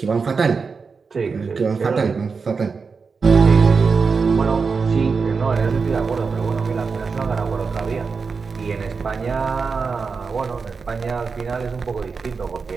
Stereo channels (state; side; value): quieter; left; 5.0 dB